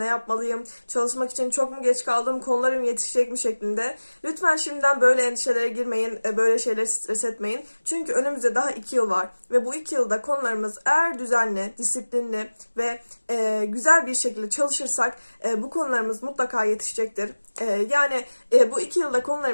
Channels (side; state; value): both; inverted; correlation -1.00